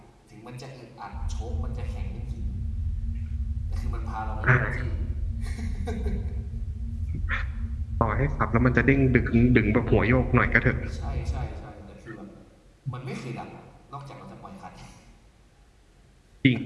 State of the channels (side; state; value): both; identical; correlation 1.00